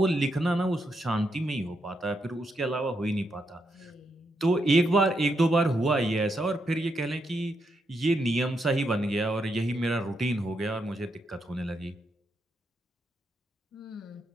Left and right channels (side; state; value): both; normal; correlation 0.81